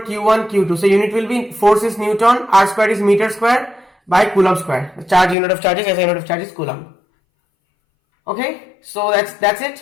Q1 Q2. So unit will be, force is Newton, R square is meter square by Coulomb square. The charge, unit of charge is SI unit of charge is Coulomb. Okay, so that's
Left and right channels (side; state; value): right; drops out; at 5.4 s